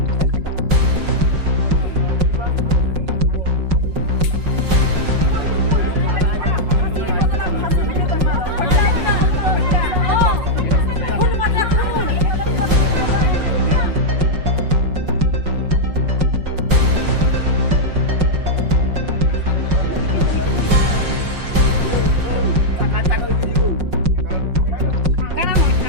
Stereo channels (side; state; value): left; late; 5.4 ms